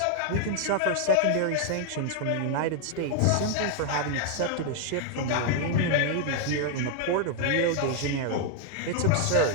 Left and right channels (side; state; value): both; different; correlation 0.00